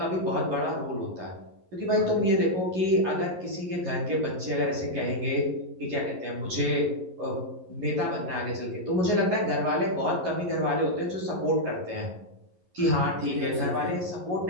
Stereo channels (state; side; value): late; left; 11 ms